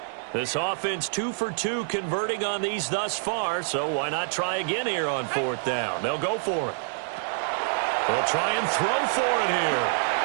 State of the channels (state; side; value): silent; left; digital silence